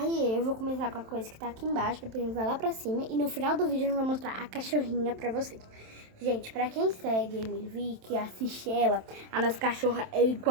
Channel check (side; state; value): left; late; 27 ms